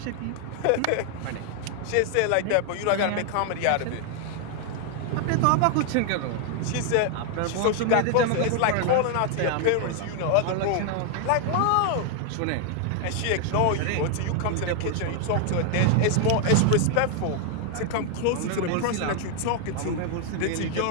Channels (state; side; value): different; both; correlation 0.00